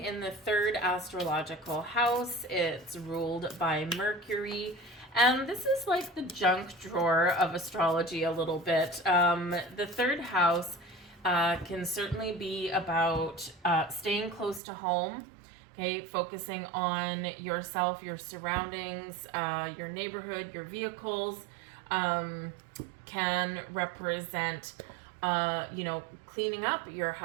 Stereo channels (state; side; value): drops out; left; at 14.6 s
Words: in the third astrological house. It's ruled by Mercury. And this is like the junk drawer of astrology a little bit. The third house can certainly be about staying close to home, okay, focusing on yourself, your surroundings, your neighborhood, your vehicles, can represent cleaning up your